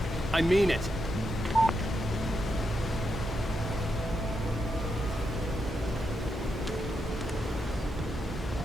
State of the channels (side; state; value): both; normal; correlation 0.84